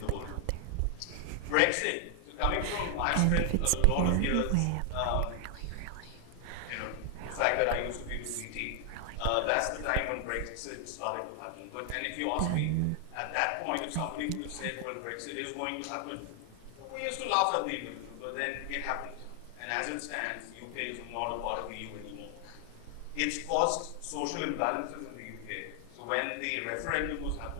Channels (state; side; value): different; both; correlation 0.00